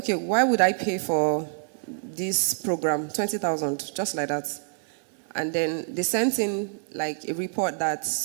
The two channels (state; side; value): silent; left; digital silence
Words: why would I pay for this program? 20,000, just like that. And then they sent in like a report that